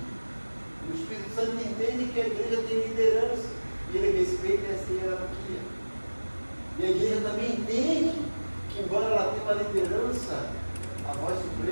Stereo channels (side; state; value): both; inverted; correlation -1.00